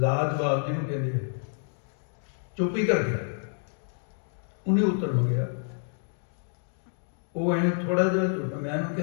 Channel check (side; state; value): right; silent; digital silence